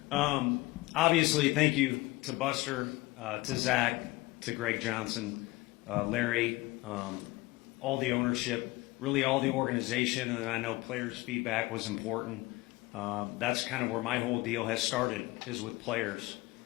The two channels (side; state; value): right; quieter; 20.9 dB